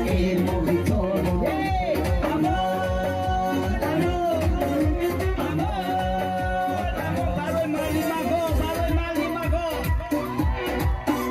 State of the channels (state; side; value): identical; both; correlation 1.00